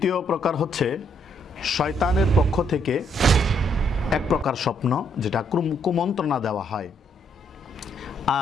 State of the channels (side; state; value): both; normal; correlation 0.72